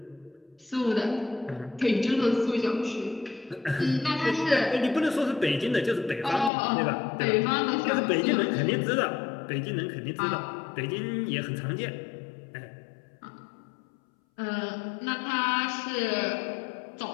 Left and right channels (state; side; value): drops out; right; at 6.5 s